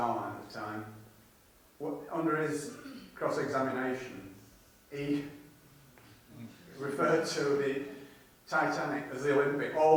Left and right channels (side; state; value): both; identical; correlation 1.00